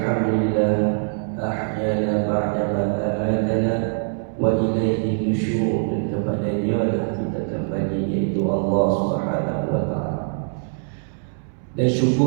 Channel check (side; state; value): left; silent; 64 dB below the other